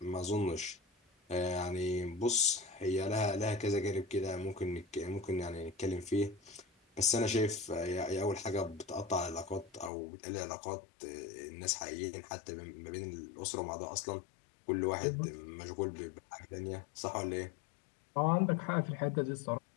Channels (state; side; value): drops out; right; at 9.9 s